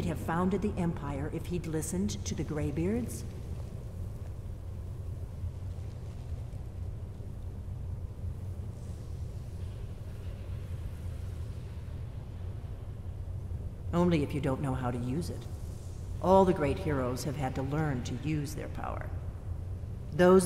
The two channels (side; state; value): both; identical; correlation 1.00